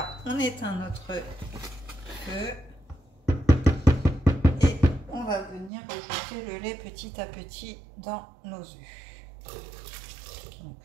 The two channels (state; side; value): drops out; left; at 5.7 s